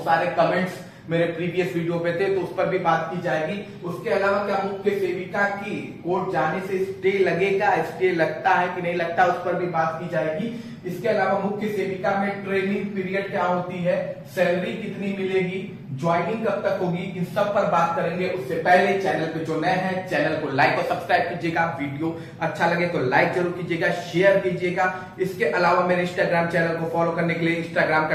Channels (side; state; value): both; identical; correlation 1.00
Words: सारे कमेंट्स मेरे प्रीवियस वीडियो पे थे, तो उस पर भी बात की जाएगी। उसके अलावा क्या मुख्य सेविका की कोर्ट जाने से स्टे लगेगा, स्टे लगता है कि नहीं लगता, उस पर भी बात की जाएगी। इसके अलावा मुख्य सेविका में ट्रेनिंग पीरियड क्या होती है, सैलरी कितनी मिलेगी, ज्वाइनिंग कब तक होगी, इन सब पर बात करेंगे। उससे पहले चैनल पे जो नए हैं चैनल को लाइक और सब्सक्राइब कीजिएगा, वीडियो अच्छा लगे तो लाइक जरूर कीजिएगा, शेयर कीजिएगा। इसके अलावा मेरे इंस्टाग्राम चैनल को फॉलो करने के लिए इंस्टाग्राम